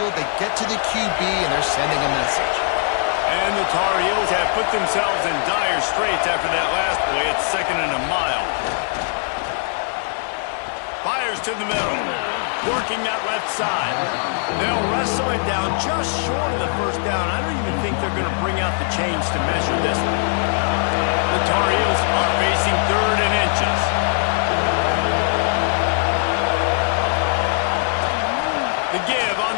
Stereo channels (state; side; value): silent; right; 58 dB below the other